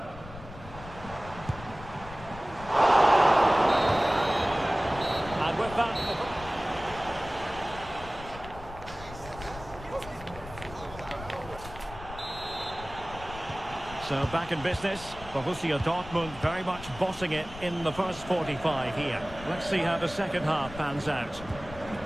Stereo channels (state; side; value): noise; left; rumble, 15 dB below the sound